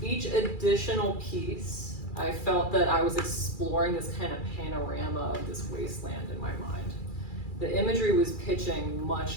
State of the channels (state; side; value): late; right; 2.3 ms